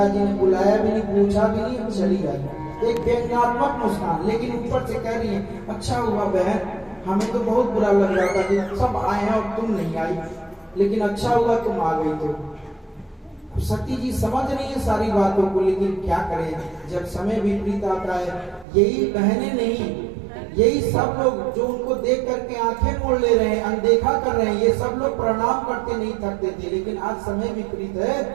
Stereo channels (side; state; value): left; drops out; at 18.7 s